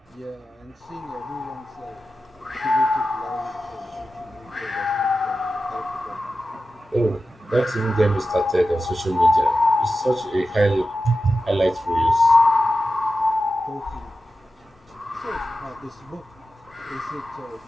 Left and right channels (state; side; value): normal; both; correlation 0.93